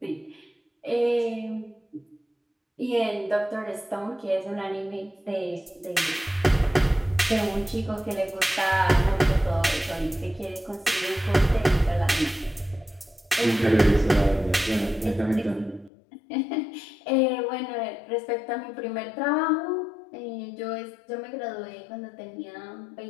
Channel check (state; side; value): drops out; right; at 15.9 s